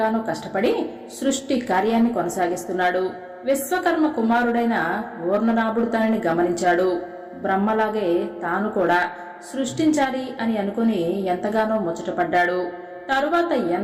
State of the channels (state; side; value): identical; both; correlation 1.00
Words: కష్టపడి సృష్టి కార్యాన్ని కొనసాగిస్తున్నాడు. విశ్వకర్మ కుమారుడైన ఊర్ణనాభుడు తనని గమనించాడు. బ్రహ్మలాగే తాను కూడా సృష్టించాలి అని అనుకుని ఎంతగానో ముచ్చటపడ్డాడు. తరువాత